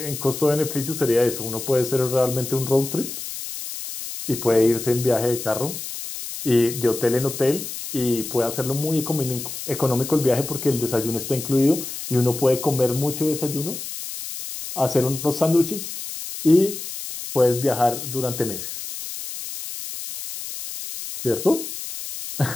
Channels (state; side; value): noise; left; hiss, 8 dB below the sound